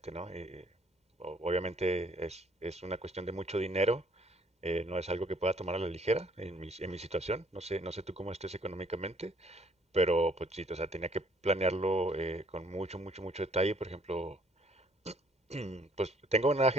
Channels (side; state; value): both; normal; correlation 0.62